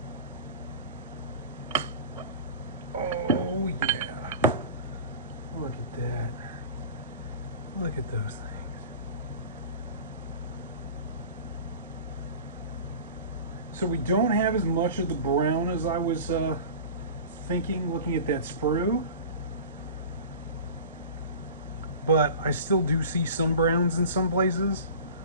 Oh, yeah. Look at that. Look at those things. So we don't have as much of the brown as I was thinking looking at that sprue. But I still do see some browns in some places.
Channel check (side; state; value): both; inverted; correlation -0.37